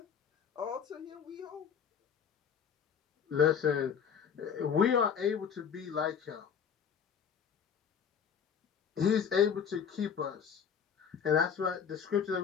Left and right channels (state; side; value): quieter; right; 7.3 dB